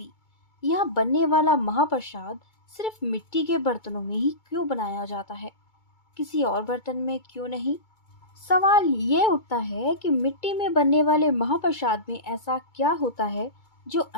यहाँ बनने वाला महाप्रसाद सिर्फ मिट्टी के बर्तनों में ही क्यों बनाया जाता है, किसी और बर्तन में क्यों नहीं? सवाल ये उठता है कि मिट्टी में बनने वाले महाप्रसाद में ऐसा क्या होता है जो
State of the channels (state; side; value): late; right; 2.2 ms